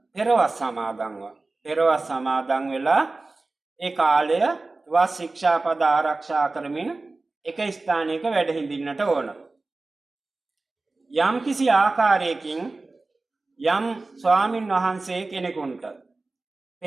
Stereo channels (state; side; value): quieter; left; 3.4 dB